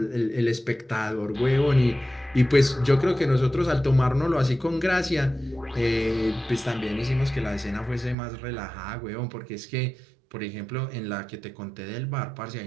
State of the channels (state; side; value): drops out; left; at 8.2 s